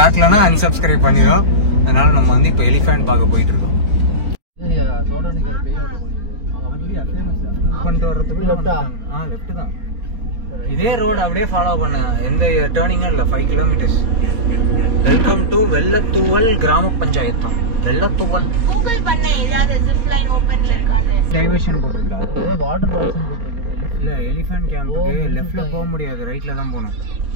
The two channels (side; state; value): left; late; 4.4 ms